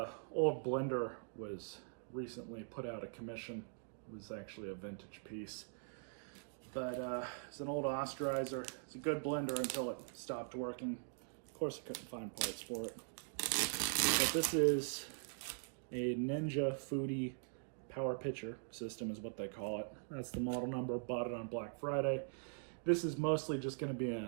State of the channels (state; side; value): silent; left; digital silence